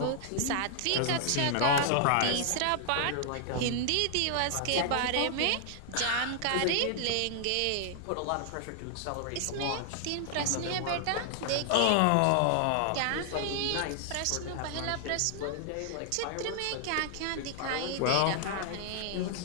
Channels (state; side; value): different; both; correlation 0.00